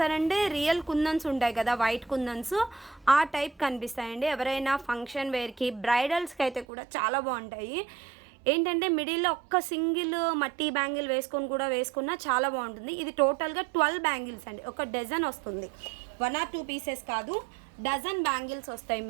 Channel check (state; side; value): drops out; left; at 6.7 s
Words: రియల్ కుందన్స్ ఉంటాయి కదా, వైట్ కుందన్స్, ఆ టైప్ కనిపిస్తాయండి. ఎవరైనా ఫంక్షన్ వేర్కి, బ్రైడల్స్కి అయితే కూడా చాలా బాగుంటాయి. ఏంటంటే మిడిల్లో ఒక్క సింగిల్ మట్టి బ్యాంగిల్ వేసుకొని కూడా వేసుకున్నా చాలా బాగుంటుంది. ఇది టోటల్గా 12 బ్యాంగిల్స్ అండి. ఒక డజన్ వస్తుంది, 1 or 2 పీసెస్ కాదు, డజన్ బ్యాంగిల్స్ వస్తాయి